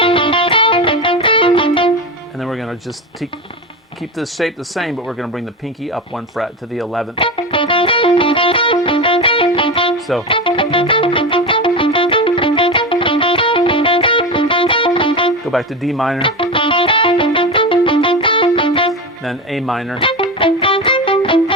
and then we're going to just keep this shape the same, but we're going to bring the pinky up 1 fret to the 11th. So Go back to D minor, then A minor.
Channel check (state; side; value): normal; both; correlation 0.20